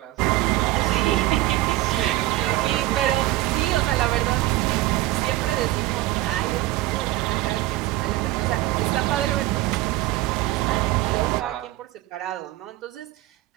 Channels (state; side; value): quieter; left; 17.3 dB